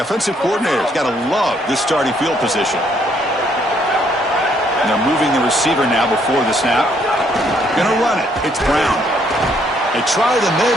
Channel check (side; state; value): both; normal; correlation 0.69